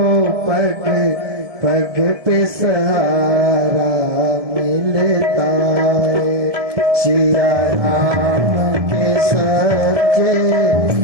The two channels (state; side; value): late; left; 1.7 ms